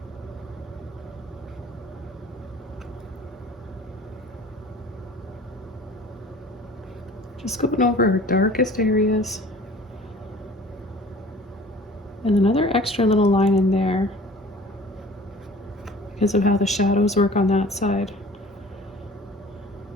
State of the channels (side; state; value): both; normal; correlation 0.46